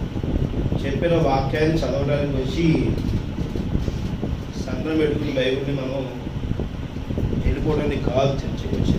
చెప్పిన వాక్యాన్ని చదవడానికి వచ్చి సంఘం పెట్టుకుని బైబిల్ని మనం వెళ్ళిపోవడానికి కాదు చర్చకి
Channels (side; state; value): both; identical; correlation 1.00